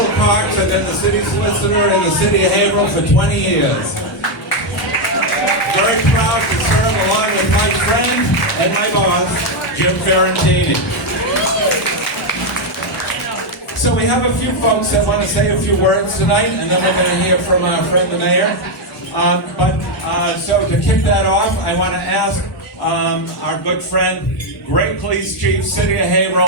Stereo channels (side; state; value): both; normal; correlation 0.03